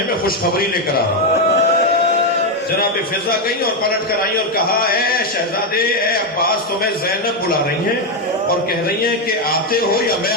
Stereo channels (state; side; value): normal; both; correlation 0.04